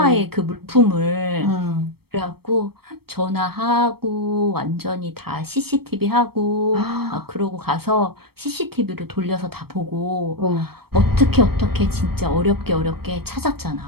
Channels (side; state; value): left; late; 0.96 ms